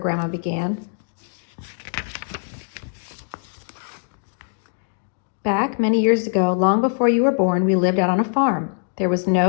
began. "Back many years ago, long before you were born, we lived out on a farm. There was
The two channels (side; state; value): right; silent; digital silence